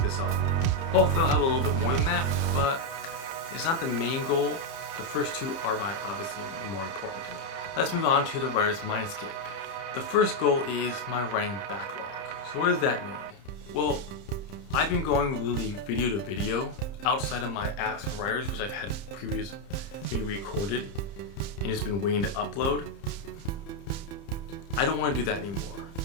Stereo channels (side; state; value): right; late; 30 ms